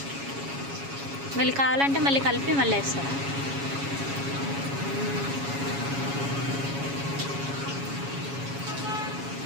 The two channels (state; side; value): late; left; 7.2 ms